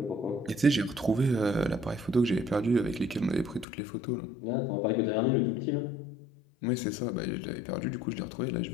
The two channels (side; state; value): right; drops out; at 3.7 s